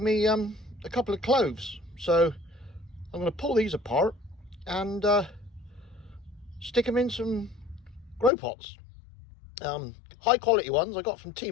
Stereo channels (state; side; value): drops out; right; at 8.3 s